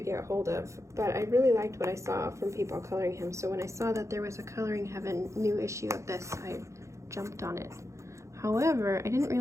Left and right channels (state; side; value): late; left; 0.14 ms